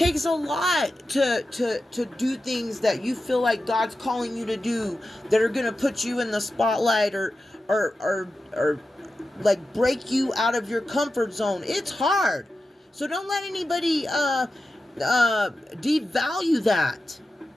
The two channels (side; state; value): both; normal; correlation 0.92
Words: a lot to do things that you feel like God's calling you to do, that are going to put you in the spotlight, or like break you out of your comfort zone. It's hard. So don't let anybody devalue that.